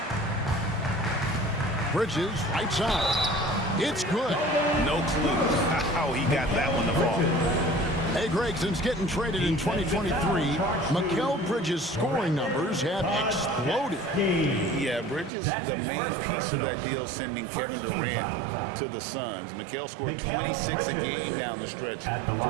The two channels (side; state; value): left; drops out; at 15.3 s